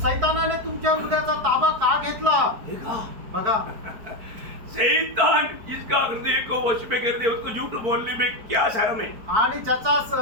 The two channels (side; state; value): left; late; 4.6 ms